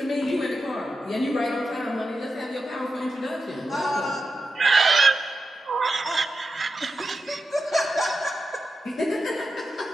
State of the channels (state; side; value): normal; both; correlation 0.90